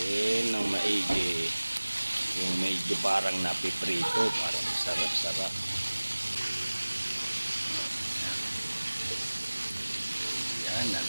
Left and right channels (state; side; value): inverted; both; correlation -1.00